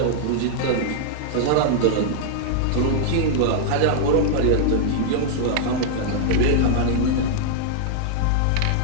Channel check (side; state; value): both; different; correlation -0.01